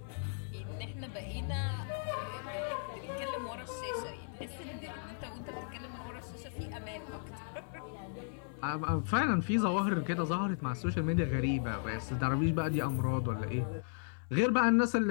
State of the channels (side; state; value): right; silent; 54 dB below the other